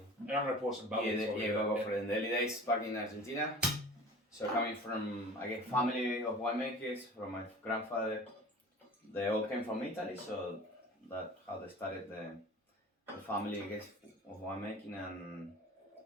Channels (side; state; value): both; normal; correlation 0.40